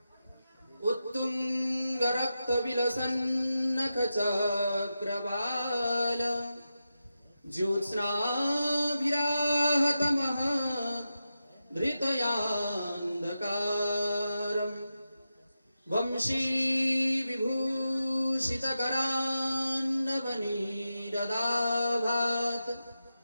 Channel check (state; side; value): inverted; both; correlation -0.90